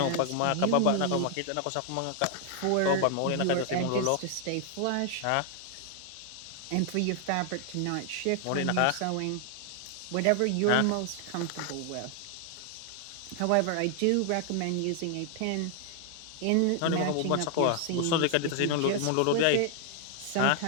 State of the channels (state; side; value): different; both; correlation 0.00